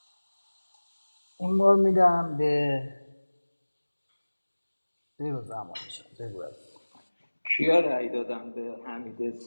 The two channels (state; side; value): inverted; both; correlation -1.00